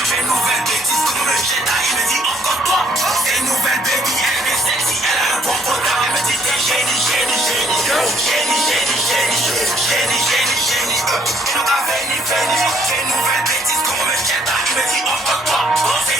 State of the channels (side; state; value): both; normal; correlation 0.65